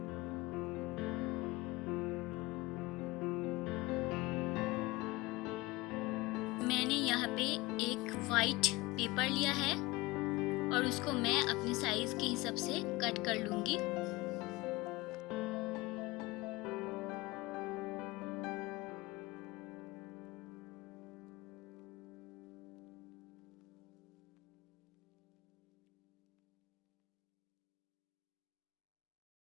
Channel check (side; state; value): right; quieter; 21.6 dB